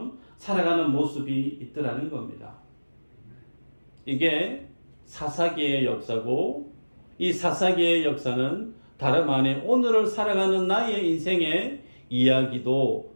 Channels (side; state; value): both; inverted; correlation -1.00